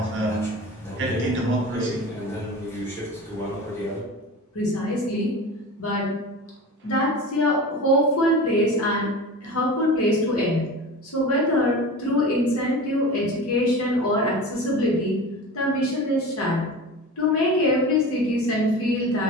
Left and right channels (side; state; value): both; normal; correlation 0.33